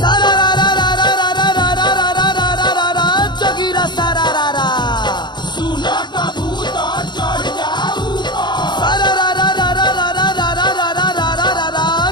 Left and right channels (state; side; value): late; right; 0.21 ms